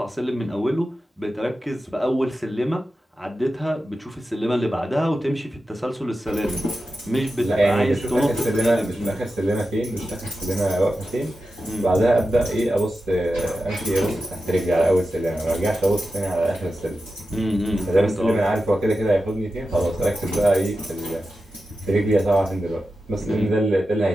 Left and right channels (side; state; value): both; normal; correlation 0.92